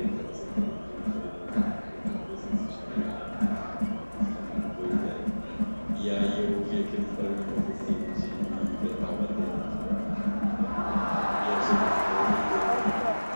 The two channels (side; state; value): both; inverted; correlation -1.00